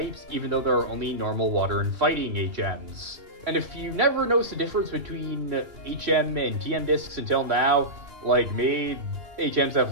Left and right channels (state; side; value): late; left; 2.8 ms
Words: even though there are only normal water and fighting HMs. And if you never noticed the difference between HM and TM discs until now, like me, HMs